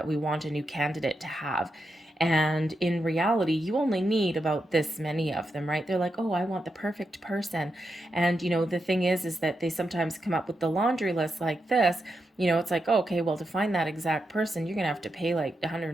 we want a new candidate to have. And in reality, you only need about this many of them, right? They're like, oh, I want the perfect person. And, the thing is that they sometimes come up with the laundry list like this. It's like, oh, okay, well, to find that exact person, you're going to have to pay like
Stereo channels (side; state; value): both; normal; correlation 0.86